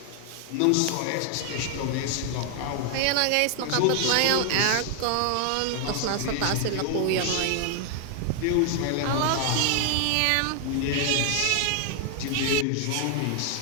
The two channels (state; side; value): different; both; correlation 0.00